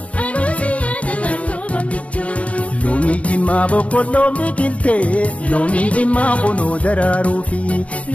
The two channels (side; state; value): right; late; 0.064 ms